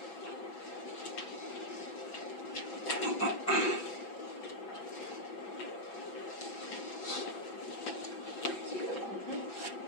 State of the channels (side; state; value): right; late; 6.5 ms